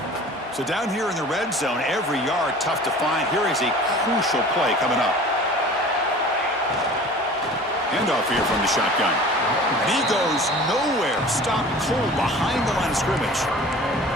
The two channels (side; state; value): both; normal; correlation 0.43